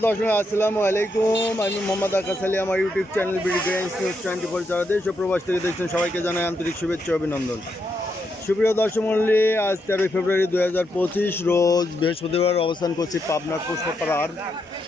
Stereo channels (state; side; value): normal; both; correlation 0.81